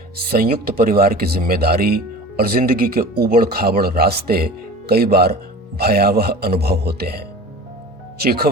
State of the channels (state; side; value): normal; both; correlation 0.38